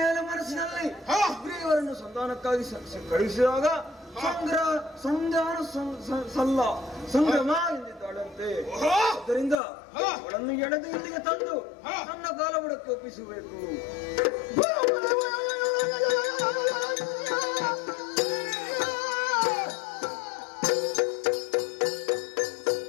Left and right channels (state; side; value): drops out; right; at 9.6 s